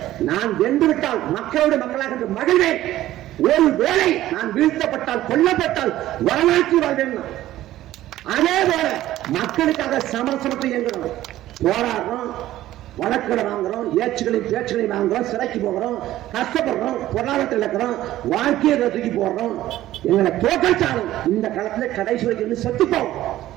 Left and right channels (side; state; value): left; quieter; 14.4 dB